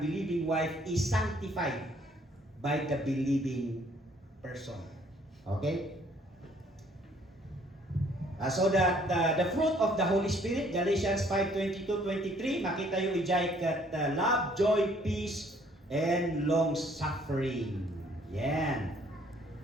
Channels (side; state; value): both; normal; correlation 0.61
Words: wife is sanctified by the believing person. Okay? So that the fruit of the Holy Spirit, Galatians 5:22-23, makita yung ijay kat love, joy, peace, and long suffering. Yan.